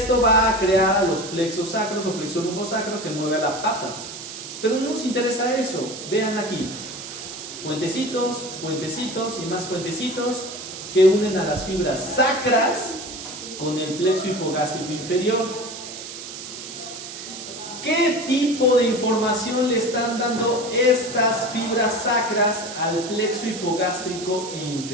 va a crear a los plexos sacros o plexo lumbosacro que mueve a la pata. Pero no nos interesa eso. Vean aquí, puentecitos, puentecitos y más puentecitos que unen a las fibras sacras con el plexo hipogástrico inferior. ¿Qué tipo de información le están dando estas fibras sacras al plexo hipogástrico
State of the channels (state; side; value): noise; right; hiss, 10 dB below the sound